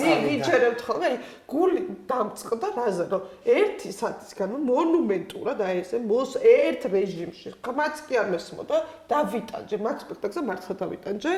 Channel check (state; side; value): identical; both; correlation 1.00